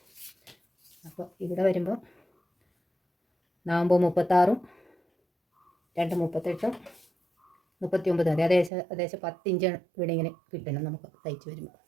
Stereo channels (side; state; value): left; drops out; at 8.7 s